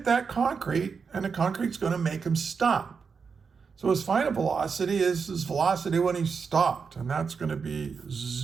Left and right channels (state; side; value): quieter; left; 5.6 dB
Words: that concrete, and the concrete's going to make him stop. So his final velocity is his velocity when he stopped, and that's going to be